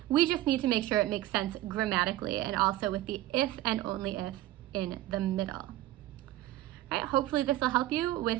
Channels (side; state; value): left; quieter; 15.2 dB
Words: We just need to make sure it makes sense grammatically and also with the if and only if in the middle. All right, hopefully this will help you